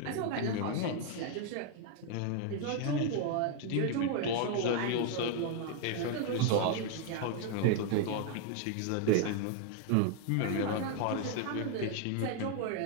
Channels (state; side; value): different; both; correlation 0.01